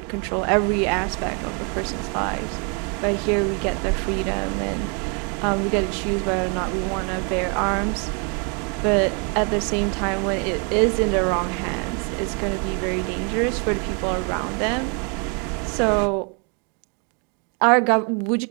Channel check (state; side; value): quieter; left; 35.8 dB